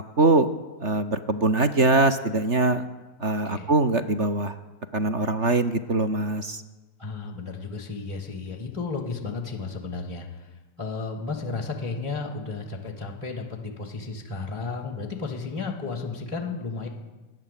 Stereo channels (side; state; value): left; late; 3.3 ms